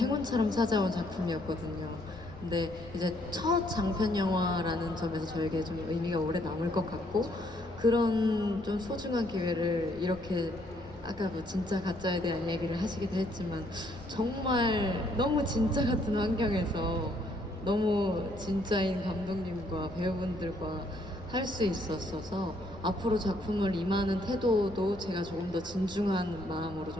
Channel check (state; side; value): noise; left; rumble, 19 dB below the sound